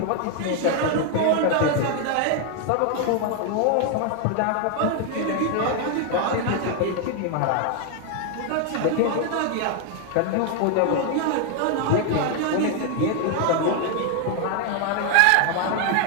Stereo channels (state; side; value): different; both; correlation 0.00